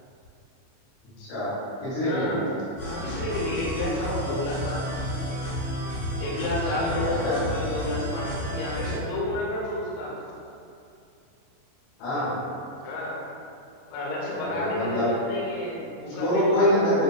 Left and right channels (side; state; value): right; late; 30 ms